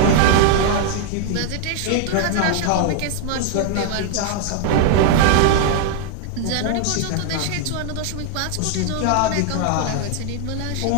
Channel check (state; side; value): different; both; correlation 0.00